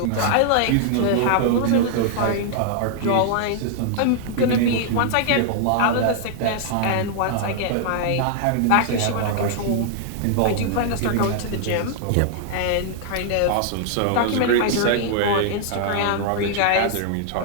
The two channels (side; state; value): both; different; correlation -0.01